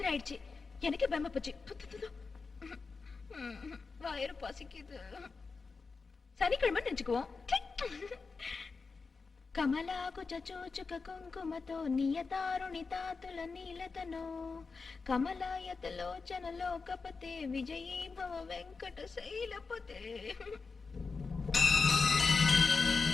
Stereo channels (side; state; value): right; quieter; 4.5 dB